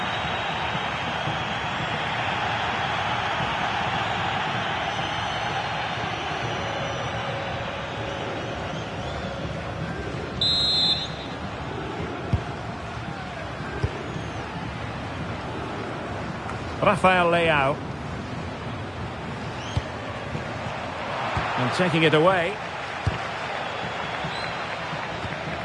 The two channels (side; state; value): both; identical; correlation 1.00